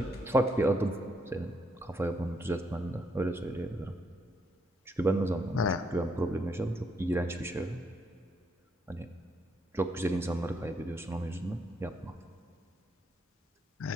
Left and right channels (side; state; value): both; normal; correlation 0.75